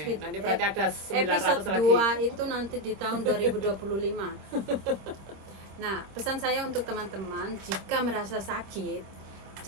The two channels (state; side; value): late; left; 25 ms